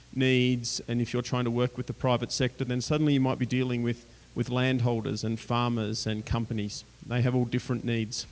needs and if you're trying to work with the private sector, then suddenly you might be dealing with landholders and farmers and companies. They have all different needs.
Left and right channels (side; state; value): both; identical; correlation 1.00